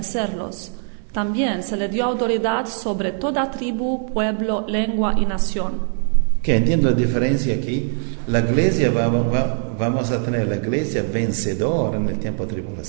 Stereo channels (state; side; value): silent; left; 63 dB below the other